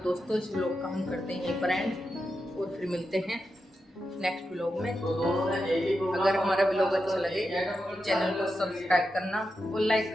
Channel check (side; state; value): both; normal; correlation 0.88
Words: इस व्लॉग का हम करते हैं यहीं पर एंड, और फिर मिलते हैं नेक्स्ट व्लॉग में। अगर हमारा व्लॉग अच्छा लगे तो चैनल को सब्सक्राइब करना और लाइक